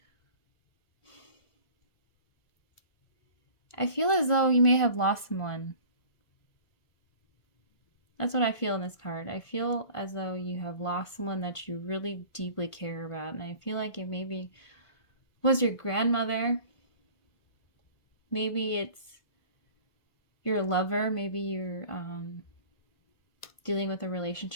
I feel as though you may have lost someone. That's what I feel in this card. I feel as though you have lost someone that you really deeply care about. And I feel like it maybe was your grandmother. Maybe it's your lover. Maybe you're dealing with a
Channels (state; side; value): late; right; 1.5 ms